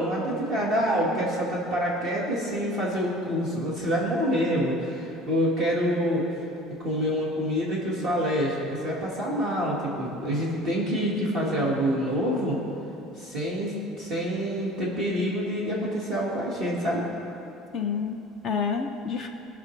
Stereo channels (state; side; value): normal; both; correlation 0.43